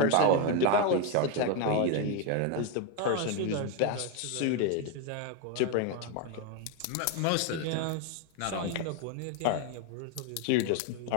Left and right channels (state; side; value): different; both; correlation 0.02